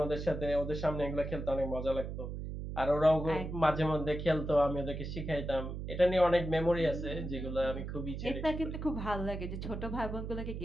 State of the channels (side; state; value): right; noise; hum, 6 dB below the sound